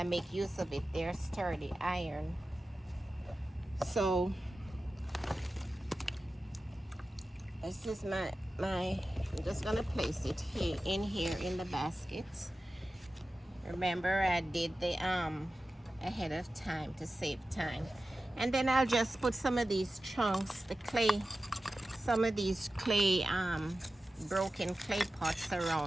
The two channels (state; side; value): normal; both; correlation 0.94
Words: make use of it. They're sturdy, iron. So this is I'm just gonna place it here in the basket. Remember, I did the ahead of time to save time. And then I'll just put some of these chunks, some of these broken clay pots